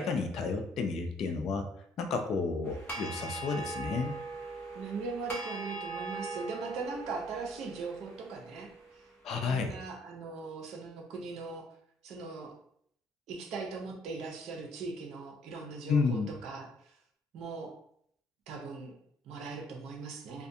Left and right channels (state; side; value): normal; both; correlation 0.62